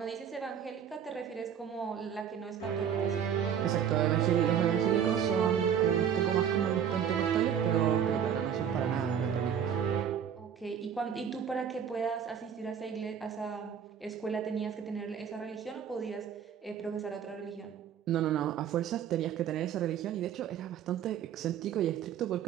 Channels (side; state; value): left; quieter; 8.5 dB